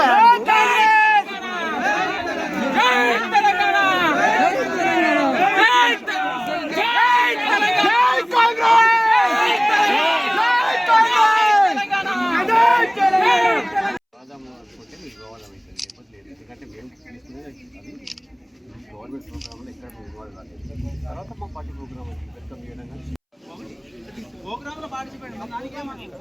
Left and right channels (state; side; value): identical; both; correlation 1.00